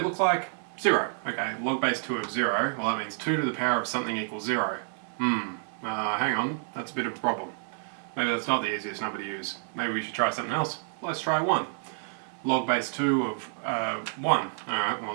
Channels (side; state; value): left; silent; digital silence